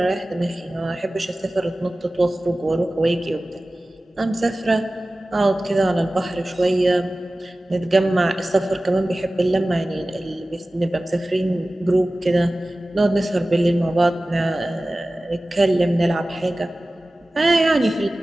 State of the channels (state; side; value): normal; both; correlation 0.97